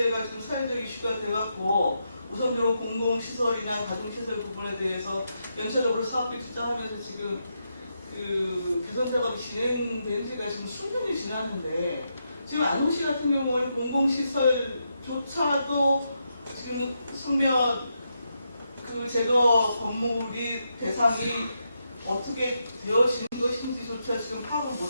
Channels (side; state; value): both; inverted; correlation -0.83